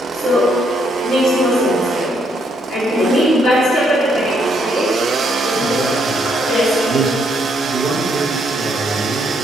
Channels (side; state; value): both; normal; correlation 0.73